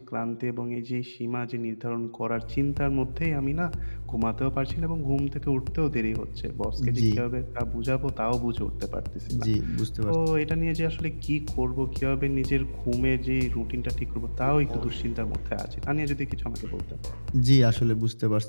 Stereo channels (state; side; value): inverted; both; correlation -1.00